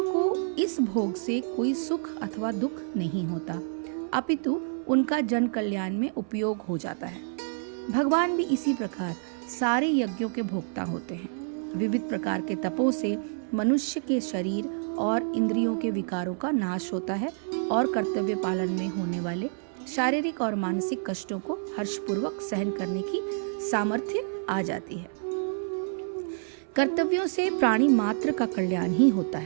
को इस भोग से कोई सुख अथवा दुख नहीं होता, अपितु उनका जन कल्याण में उपयोग हो जाता है। भगवान भी इसी प्रकार सारे यज्ञों के भोक्ता होते हैं। विविध प्रकार के तपों से मनुष्य के शरीर और इंद्रियों के विकारों का नाश होता है और कर्तव्य पालन में होने वाले शारीरिक और मानसिक कष्टों को हर्षपूर्वक सहन करने की सामर्थ्य आ जाती है। कर्तव्यों से प्राणी मात्र का कल्याण ही होता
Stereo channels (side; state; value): left; silent; 59 dB below the other